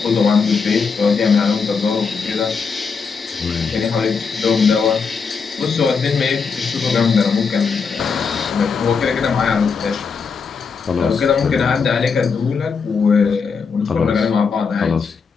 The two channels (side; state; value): right; quieter; 5.4 dB